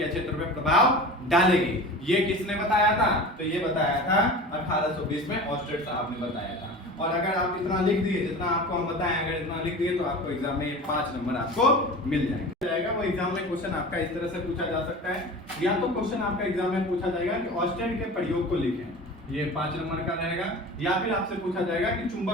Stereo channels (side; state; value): both; normal; correlation 0.35